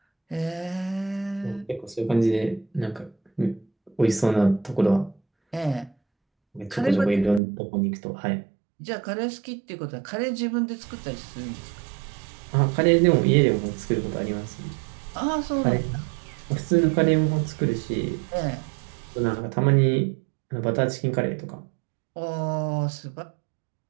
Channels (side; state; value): left; drops out; at 7.4 s